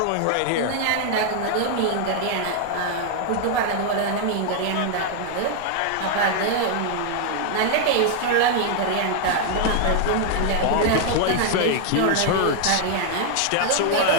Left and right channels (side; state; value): both; different; correlation 0.00